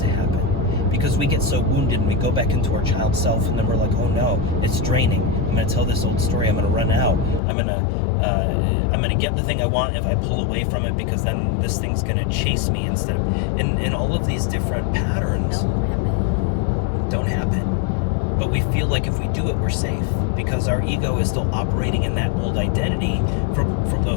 happen. Because we get so wounded and we go back into our child self, and then we're like, oh no, it's draining. I'm going to tell this old story. I'm going to run out. I'm going to get the thing I want if I pull away from it, because then this thing's going to chase me instead of, and all of these different patterns don't happen. But we feel like if we do it, we're safe, because our ego is still operating in that old identity from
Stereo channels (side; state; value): right; drops out; at 7.4 s